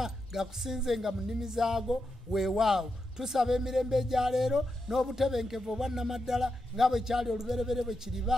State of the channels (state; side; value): normal; both; correlation 0.86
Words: gakusinzenga mu nnimi zaago weewaawo tusaba emirembe egya leero n'obutebenkevu obwannamaddala nga bwe kyali oluberebere bwe